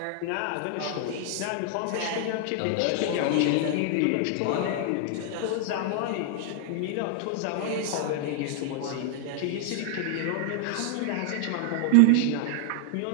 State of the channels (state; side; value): different; both; correlation 0.00